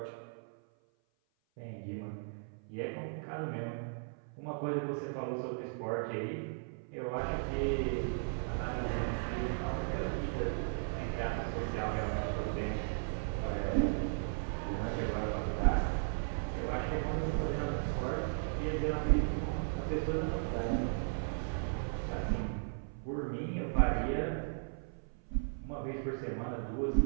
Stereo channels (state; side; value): silent; left; 54 dB below the other